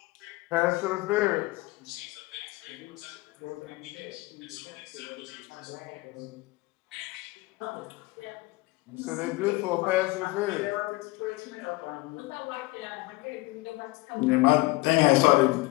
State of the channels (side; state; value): right; quieter; 22.1 dB